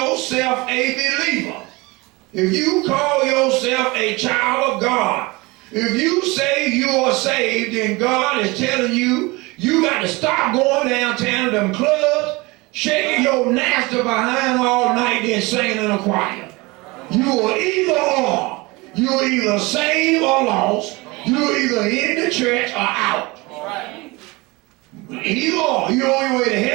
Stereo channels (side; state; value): left; quieter; 24.0 dB